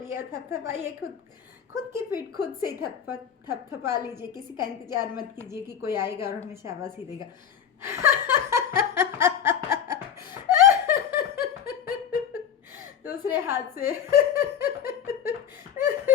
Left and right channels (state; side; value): quieter; right; 8.3 dB